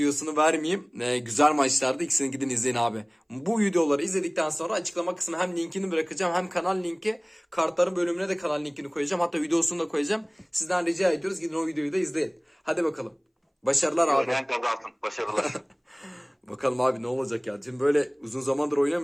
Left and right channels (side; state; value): both; identical; correlation 1.00